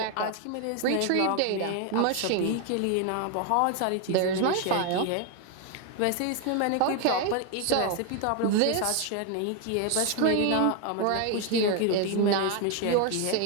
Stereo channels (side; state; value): both; different; correlation 0.01